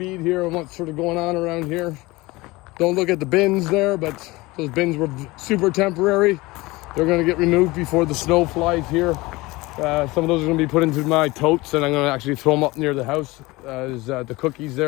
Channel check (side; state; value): right; quieter; 21.6 dB